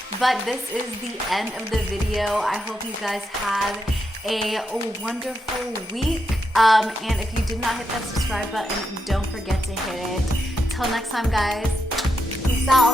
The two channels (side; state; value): both; normal; correlation 0.84